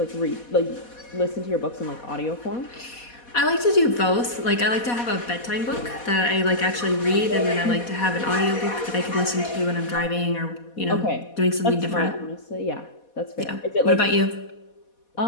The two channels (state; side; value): late; right; 4.2 ms